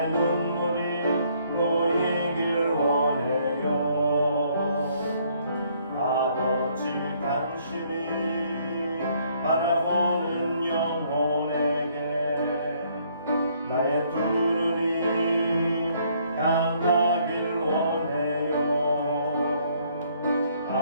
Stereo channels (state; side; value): inverted; both; correlation -0.66